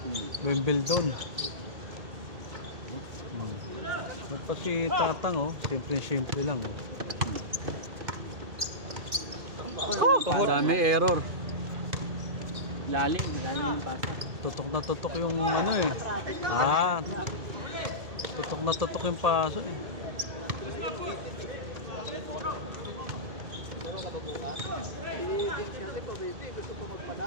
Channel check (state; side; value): late; left; 2.2 ms